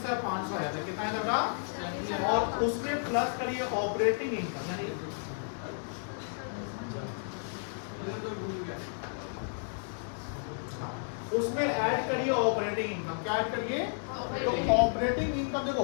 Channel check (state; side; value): silent; right; digital silence